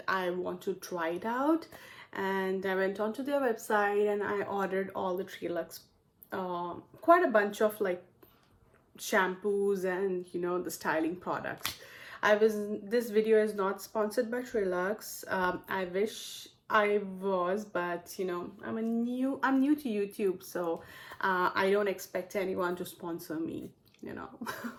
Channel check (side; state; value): both; identical; correlation 1.00